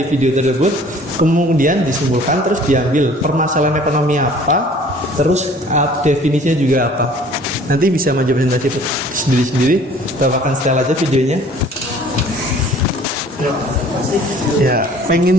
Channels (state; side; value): normal; both; correlation 0.52